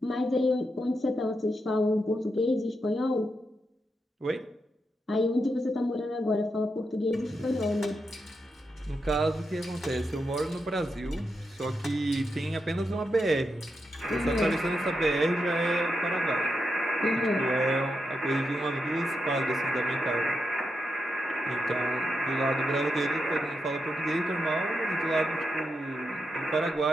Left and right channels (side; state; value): both; normal; correlation 0.85